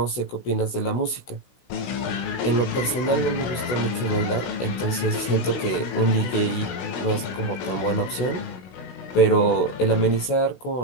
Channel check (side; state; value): right; late; 16 ms